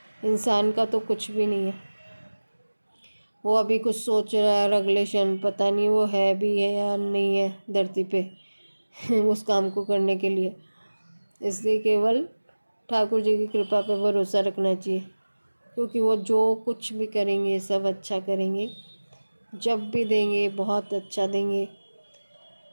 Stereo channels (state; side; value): inverted; both; correlation -1.00